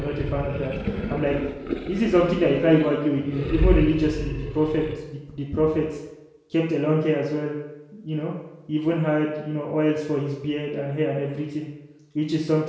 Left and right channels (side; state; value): both; identical; correlation 1.00